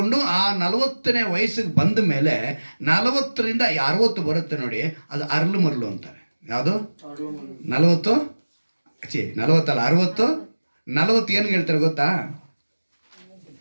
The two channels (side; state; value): both; inverted; correlation -1.00